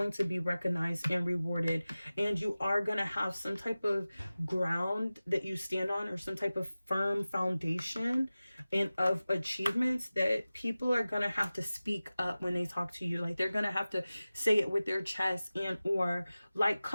to be recognized and rewarded, and you are gonna have some type of ground that you stand on, or some type of firm foundation and of achievements that people are gonna have to speak up when they talk to you. Like, they're gonna have to say it with their chest, and or like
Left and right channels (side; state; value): both; inverted; correlation -0.96